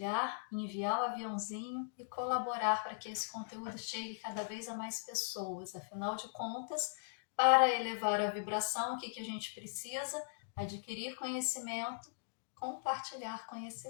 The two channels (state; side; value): silent; right; digital silence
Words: enviar o aviãozinho e colaborar para que esse conteúdo chegue cada vez a mais pessoas. Afinal de contas, para elevar a vibração, o que a gente precisa? Adquirir conhecimento, compartilhar